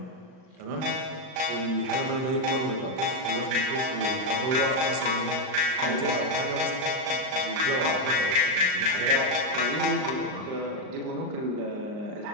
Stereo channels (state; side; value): late; left; 38 ms